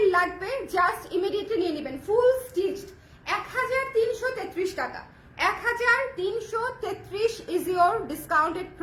লাগবে জাস্ট ইমিডিয়েটলি নিয়ে নেবেন। ফুল স্টিচড 1333 টাকা, 1333 ইজ ইয়োর ডিসকাউন্টেড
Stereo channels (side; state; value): both; identical; correlation 1.00